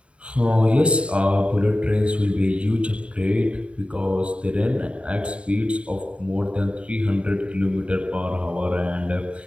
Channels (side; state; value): left; late; 0.060 ms